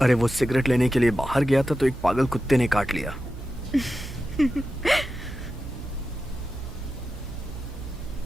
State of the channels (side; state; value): right; noise; hum, 12 dB below the sound